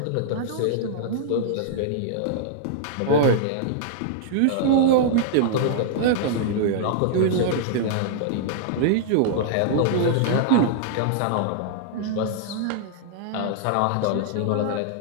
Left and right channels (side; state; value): both; different; correlation -0.01